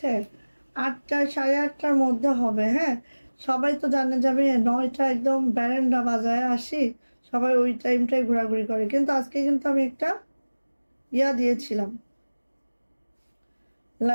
8টা 8:30টার মধ্যে হবে, হ্যাঁ সবাই তো জানে যাবে 9টা একদম ব্যারেন্ডা বাজায় আসি, সবাই ওই টাইমটাই ঘোরাঘুরি করে, কিন্তু আজকে কিন্তু আমি একটা ইয়া দিয়েছিলাম,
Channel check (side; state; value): both; inverted; correlation -1.00